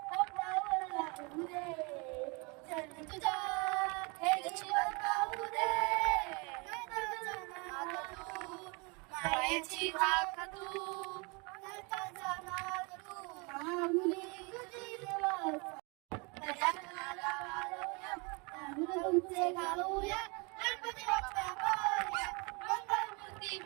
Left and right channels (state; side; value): quieter; left; 30.3 dB